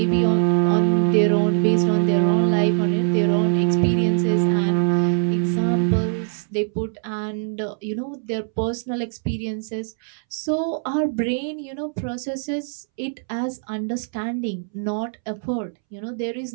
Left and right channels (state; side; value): silent; left; 64 dB below the other